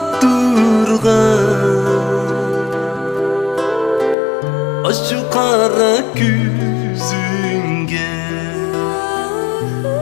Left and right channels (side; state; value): right; drops out; at 4.2 s